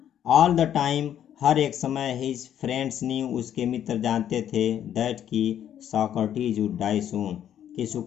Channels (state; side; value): quieter; right; 10.2 dB